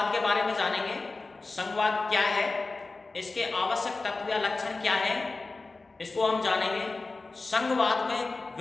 के बारे में जानेंगे। संघवाद क्या है, इसके आवश्यक तत्व या लक्षण क्या हैं, इसको हम जानेंगे। संघवाद में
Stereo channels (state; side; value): quieter; right; 3.6 dB